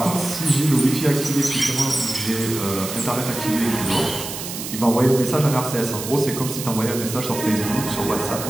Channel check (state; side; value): noise; right; hiss, 8 dB below the sound